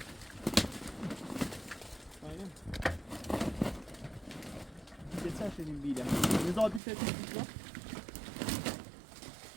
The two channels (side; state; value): left; drops out; at 6.8 s